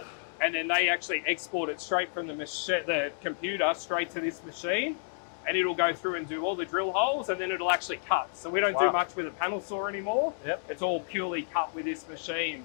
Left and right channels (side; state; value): right; silent; digital silence